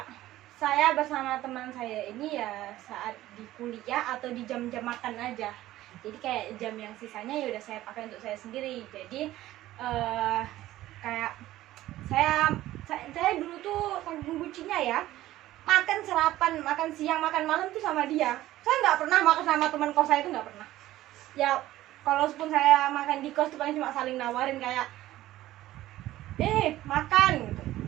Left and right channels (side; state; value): left; quieter; 15.2 dB